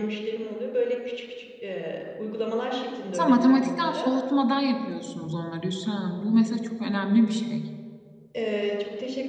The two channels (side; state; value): both; identical; correlation 1.00